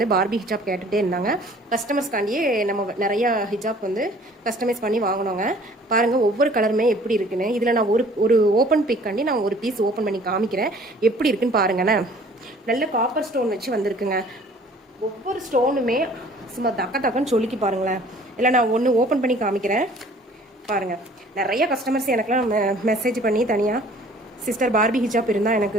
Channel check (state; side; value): normal; both; correlation 0.52